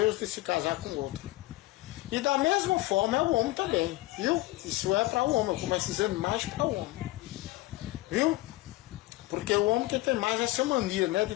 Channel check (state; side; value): quieter; right; 18.8 dB